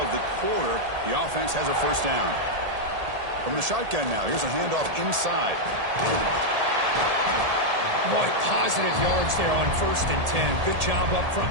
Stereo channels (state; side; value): late; left; 1.8 ms